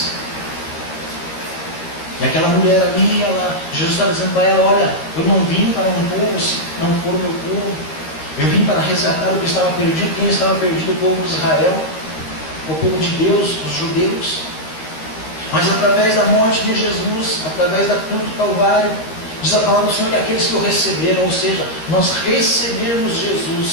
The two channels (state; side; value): late; right; 13 ms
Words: E aquela mulher ali, Jesus estava dizendo para ela: olha, eu não vim para um povo se não for o meu povo. Eu vim para resgatar o que estava perdido. Quem estava perdido? O povo de Israel, o povo de Deus, os judeus. Mas através da morte de Jesus, através da cruz do Calvário, diz a palavra do Senhor que aqueles que o receberam, ou seja, nós recebermos